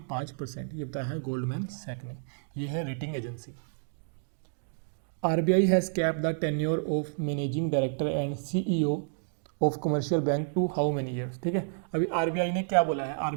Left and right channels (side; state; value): left; silent; digital silence